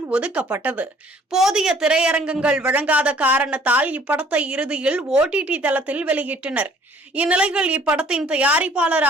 ஒதுக்கப்பட்டது. போதிய திரையரங்கங்கள் வழங்காத காரணத்தால் இப்படத்தை இறுதியில் OTT தளத்தில் வெளியிட்டனர். இந்நிலையில் இப்படத்தின்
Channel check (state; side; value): normal; both; correlation 0.57